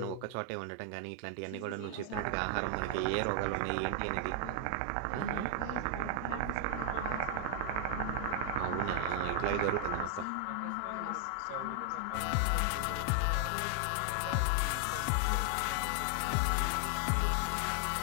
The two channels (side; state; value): both; different; correlation 0.00